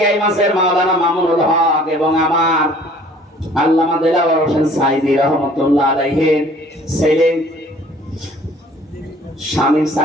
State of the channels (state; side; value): normal; both; correlation 0.53